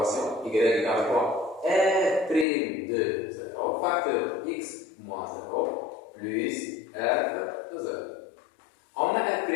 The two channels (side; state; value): right; drops out; at 2.5 s